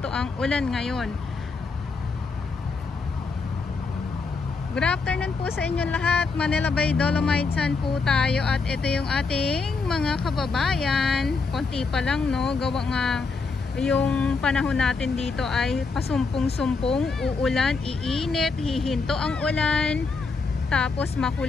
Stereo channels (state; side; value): quieter; right; 4.4 dB